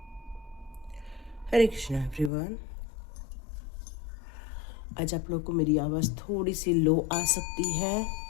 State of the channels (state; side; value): drops out; right; at 2.3 s